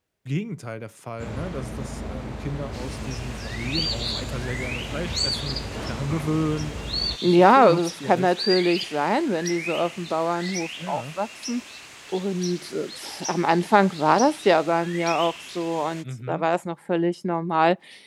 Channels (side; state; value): both; identical; correlation 1.00